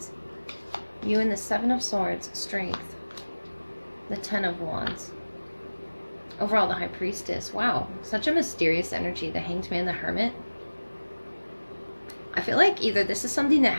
You and the Seven of Swords, Strength. The Ten of Wands. Overall, the High Priestess. Wow, such a mysterious energy. The Hanged Man, the Hermit. I feel like either this is something that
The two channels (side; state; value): both; inverted; correlation -1.00